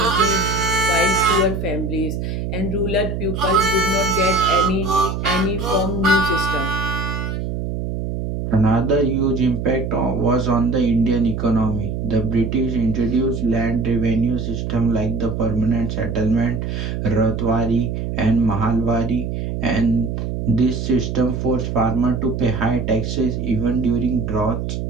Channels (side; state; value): right; noise; hum, 3 dB below the sound